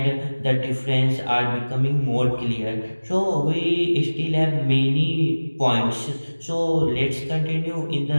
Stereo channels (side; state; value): both; inverted; correlation -1.00